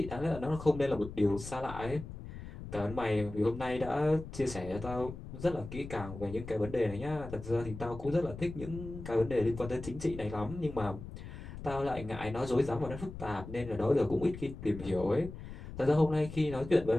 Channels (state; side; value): noise; left; rumble, 11 dB below the sound